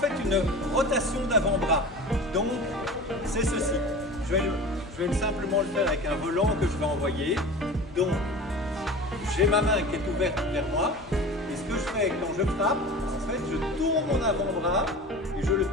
une rotation d'avant-bras. Donc c'est ceci. Je vais simplement le faire avec un volant que je vais envoyer. Donc j'ai ma main qui est ouverte vers moi. Et ce que je fais quand je frappe, en fait je tourne mon avant-bras et je le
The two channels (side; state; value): both; normal; correlation 0.35